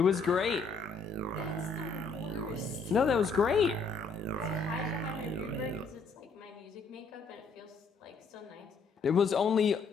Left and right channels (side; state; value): right; quieter; 4.2 dB